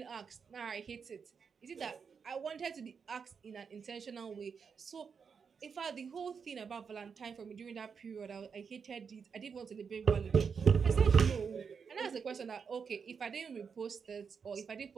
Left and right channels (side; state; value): left; quieter; 6.1 dB